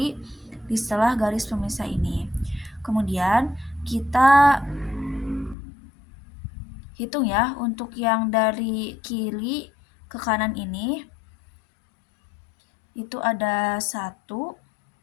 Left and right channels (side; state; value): right; drops out; at 5.6 s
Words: di setelah garis pemisah ini. Kemudian kita hitung ya untuk yang dari kiri ke kanan ini. Itu ada 1